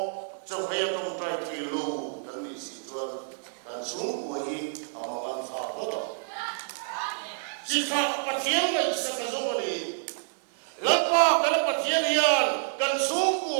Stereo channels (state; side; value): silent; left; 56 dB below the other